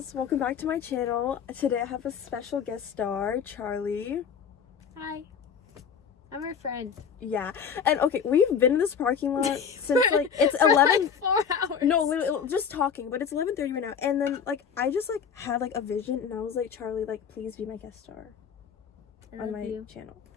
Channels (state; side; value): quieter; right; 7.0 dB